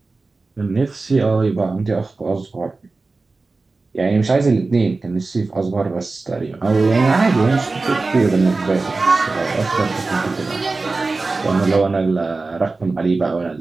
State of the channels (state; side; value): quieter; left; 3.7 dB